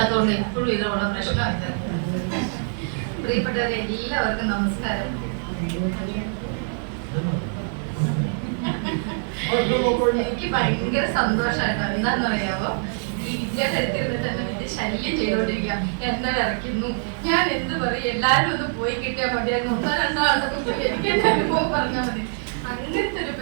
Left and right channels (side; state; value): left; silent; 58 dB below the other